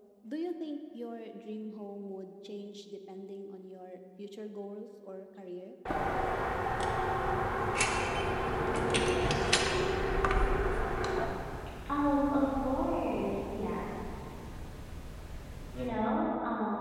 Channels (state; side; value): identical; both; correlation 1.00